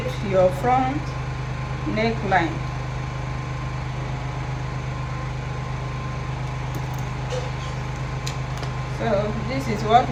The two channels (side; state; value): both; identical; correlation 1.00